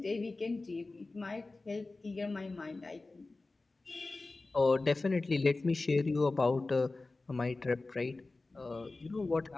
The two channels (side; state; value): right; quieter; 3.4 dB